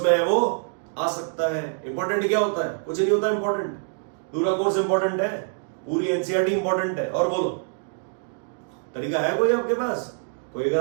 में है वो आ सकता है। इंपॉर्टेंट क्या होता है? कुछ नहीं होता इंपॉर्टेंट, पूरा कोर्स इंपॉर्टेंट है, पूरी एनसीईआरटी इंपॉर्टेंट है। और बोलो, तरीका है कोई आपके पास? कोई अगर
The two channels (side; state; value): left; silent; digital silence